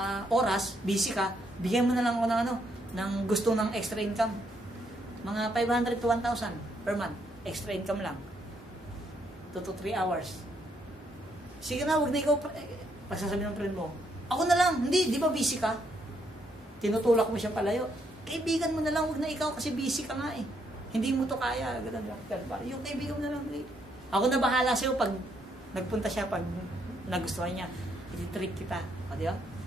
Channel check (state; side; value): normal; both; correlation 0.74